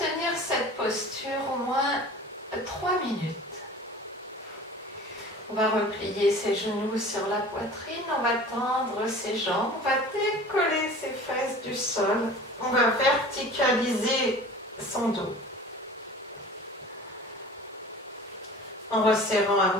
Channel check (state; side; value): normal; both; correlation 0.41